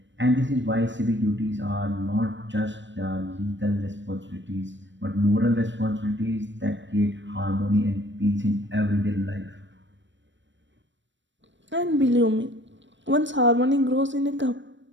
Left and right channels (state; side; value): late; left; 0.54 ms